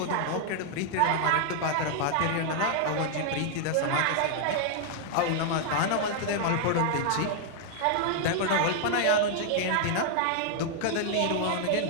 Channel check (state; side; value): different; both; correlation 0.00